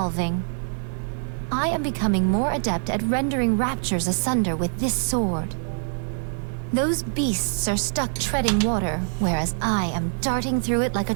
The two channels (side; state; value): left; silent; digital silence